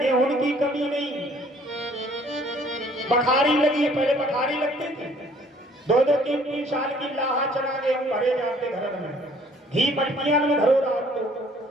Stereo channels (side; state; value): both; normal; correlation 0.58